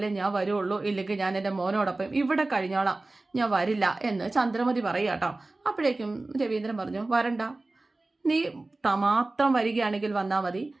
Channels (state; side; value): quieter; left; 3.1 dB